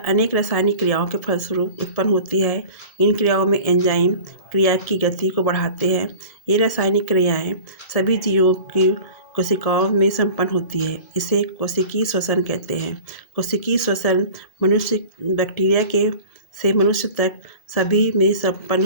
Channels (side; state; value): right; late; 1.8 ms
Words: अनेक रासायनिक क्रियाओं के फलस्वरूप उत्पन्न होती है। इन क्रियाओं में एंजाइम क्रिया की गति को बढ़ाते हैं। ये रासायनिक क्रियाएं सभी जीवों की कोशिकाओं में संपन्न होती है। इसे कोशिकीय श्वसन कहते हैं। कोशिकीय श्वसन मनुष्य बैक्टीरिया से मनुष्य तक सभी में संपन्न